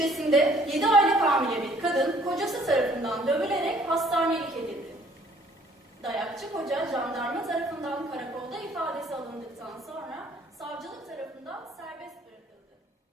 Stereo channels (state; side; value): normal; both; correlation 0.59